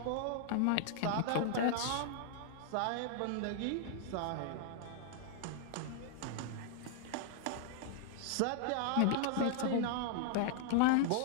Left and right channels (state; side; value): different; both; correlation -0.01